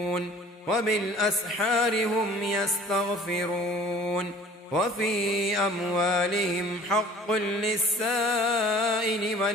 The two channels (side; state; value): both; normal; correlation 0.49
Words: وبالأسحار هم يستغفرون وفي أموالهم حق للسائل